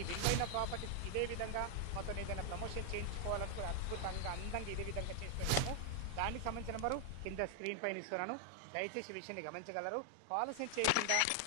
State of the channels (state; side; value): different; both; correlation 0.00